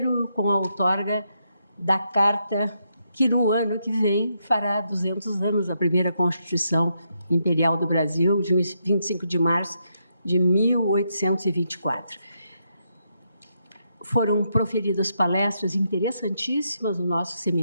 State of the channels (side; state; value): both; inverted; correlation -0.80